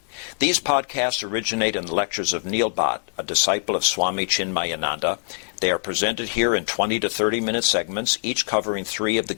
These podcasts originate in the lectures of Neil Bhatt, a disciple of Swami Chinmayananda. They are presented here in 20 to 30-minute segments, each covering 3 of the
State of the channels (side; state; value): right; silent; digital silence